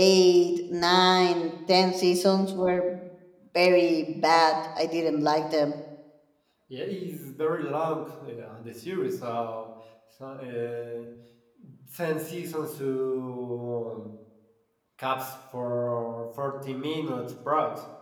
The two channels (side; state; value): both; identical; correlation 1.00